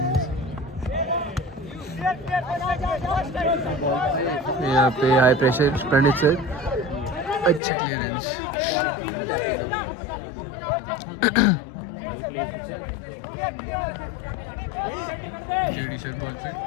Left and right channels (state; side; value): drops out; right; at 7.6 s